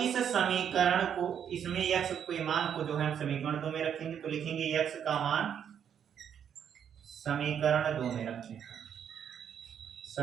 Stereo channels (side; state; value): left; quieter; 8.5 dB